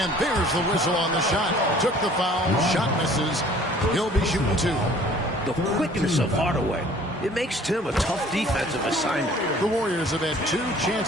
there's the whistle on the shot. Took the foul. Shot misses. He'll be shooting 2. The quickness of Hardaway. It makes Tim a tough defensive assignment. The Warriors have had 2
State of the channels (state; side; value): normal; both; correlation 0.52